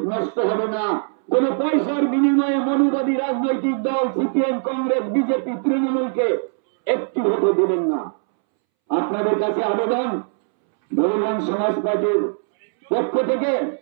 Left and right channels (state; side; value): silent; left; 64 dB below the other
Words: নষ্ট হবে না। কোন পয়সার বিনিময়ে মনুবাদী রাজনৈতিক দল সিপিএম, কংগ্রেস, বিজেপি, তৃণমূলকে একটি ভোটও দেবেন না। আপনাদের কাছে আবেদন, বহুজন সমাজ পার্টির পক্ষ থেকে